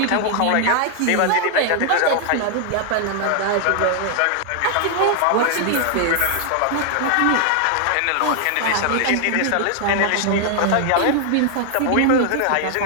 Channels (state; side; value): different; both; correlation 0.00